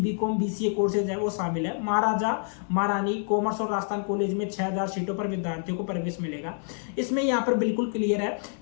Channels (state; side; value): silent; right; 60 dB below the other